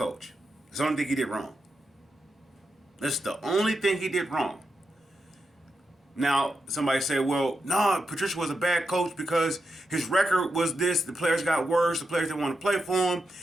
It's the only thing he did wrong. That's the only thing he did wrong. Now, somebody said, well, no, Patricia was a bad coach because his record was this. The players got worse. The players didn't want to play for him.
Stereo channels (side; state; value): both; normal; correlation 0.86